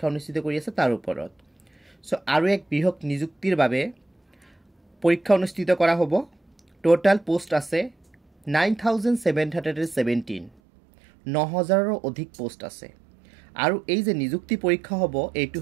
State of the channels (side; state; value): left; drops out; at 10.5 s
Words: অনুষ্ঠিত কৰি আছে তাৰ ওপৰত। সো আৰু এক বৃহৎ নিযুক্তিৰ বাবে পৰীক্ষা অনুষ্ঠিত কৰা হ'ব। টোটাল পোষ্ট আছে 9717, 9000ৰ অধিক পোষ্ট আছে। আৰু এই যে নিযুক্তি পৰীক্ষা হ'ব এইটো